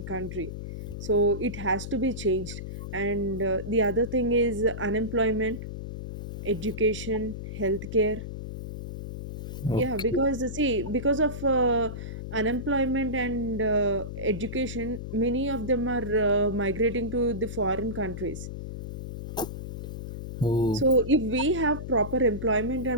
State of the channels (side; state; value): left; noise; hum, 8 dB below the sound